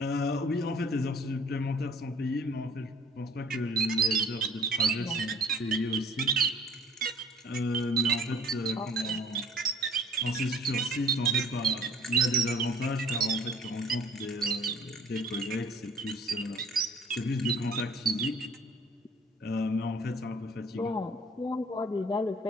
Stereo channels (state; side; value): normal; both; correlation 0.51